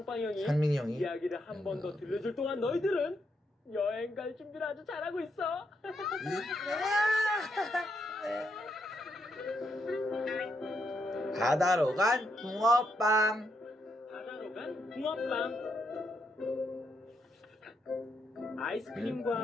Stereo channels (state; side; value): normal; both; correlation 0.79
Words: 형이 상민이 형이 이야기를 한 번 더 들려줄 동안 너희들은 여행 갈 준비를 아주 잘하고 있어. 바다로 간 붕어빵. 바다로 간 붕어빵.